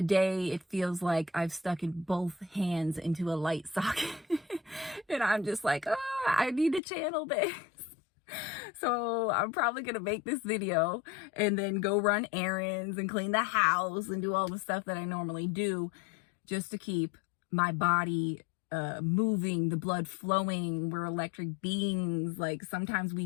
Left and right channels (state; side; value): drops out; right; at 6.8 s